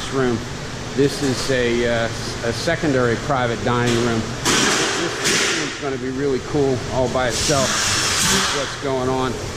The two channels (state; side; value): identical; both; correlation 1.00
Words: room, this is a secondary private dining room. It's going to be really cool all by itself. This is what's going on.